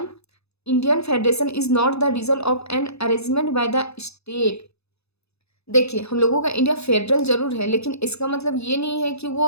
Indian federation is not the result of an arrangement by the state. देखिए, हम लोगों का इंडिया फेडरल ज़रूर है, लेकिन इसका मतलब ये नहीं है कि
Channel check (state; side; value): late; right; 0.79 ms